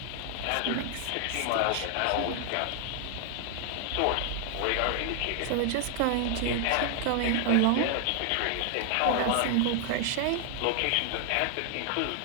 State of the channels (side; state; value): both; different; correlation 0.00